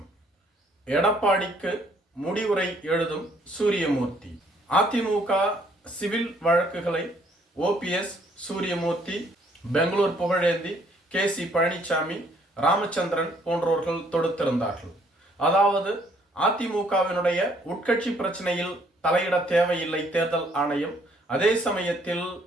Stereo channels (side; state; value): both; normal; correlation 0.64